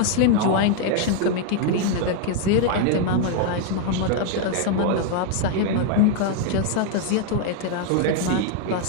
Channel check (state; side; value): different; both; correlation 0.00